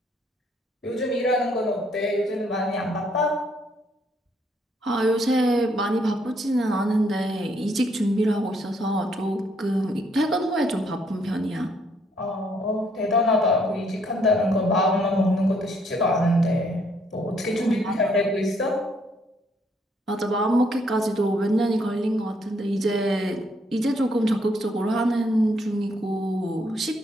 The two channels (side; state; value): both; normal; correlation 0.69